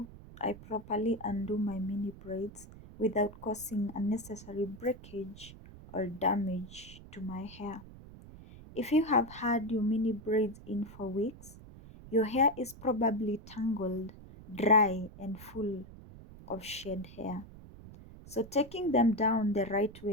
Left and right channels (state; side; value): noise; right; rumble, 17 dB below the sound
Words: I properly undo my mini braids without causing unnecessary breakage or damage to my hair. If you have had your mini braids in for weeks, your hair is probably tangled, dry and full of shed hair. So taking them down the right